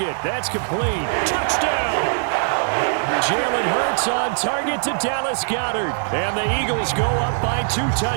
That's complete. Touchdown! Jalen Hurts on target to Dallas Goedert. And the Eagles go up by 2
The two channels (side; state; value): left; silent; digital silence